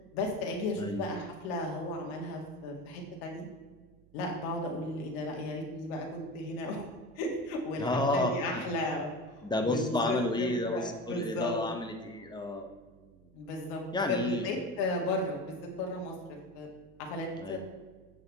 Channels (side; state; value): right; noise; hum, 26 dB below the sound